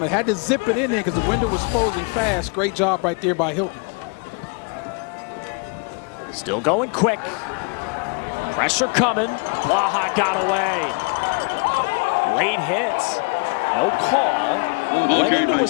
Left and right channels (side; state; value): right; quieter; 33.1 dB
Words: it. Had to zip it in there because the window was closing fast. Great job right there by Hilton. Still going quick. Pressure coming. Blaha got away. Late hit. No call. Went into a